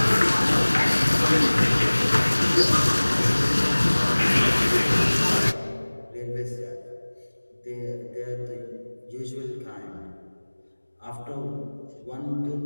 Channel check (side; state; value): both; inverted; correlation -1.00